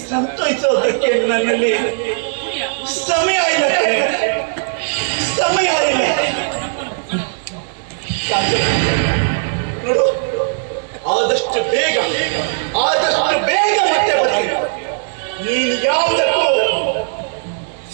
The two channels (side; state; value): left; silent; 59 dB below the other